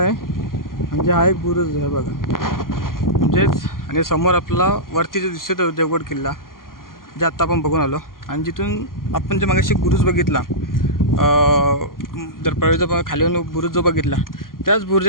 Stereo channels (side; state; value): right; late; 0.91 ms